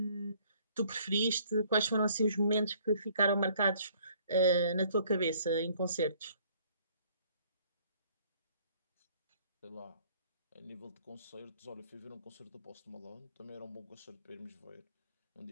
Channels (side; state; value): both; inverted; correlation -0.60